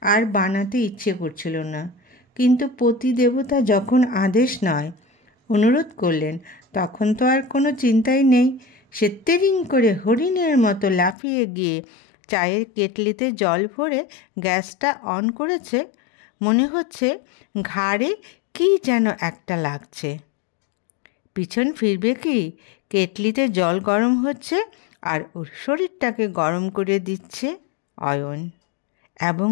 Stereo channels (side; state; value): right; drops out; at 11.2 s